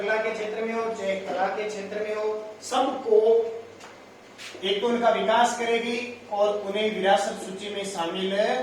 के क्षेत्र में हो, चाहे कला के क्षेत्र में हो, सबको एक तो उनका विकास करेगी और उन्हें विरासत सूची में शामिल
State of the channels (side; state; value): both; identical; correlation 1.00